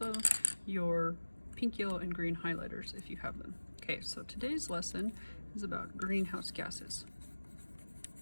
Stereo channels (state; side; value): inverted; both; correlation -1.00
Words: your pink, yellow, and green highlighters if you have them. Okay, so today's lesson is about greenhouse gases.